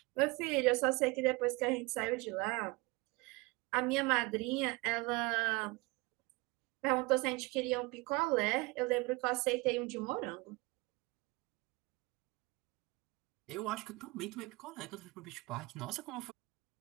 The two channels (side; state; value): left; quieter; 24.7 dB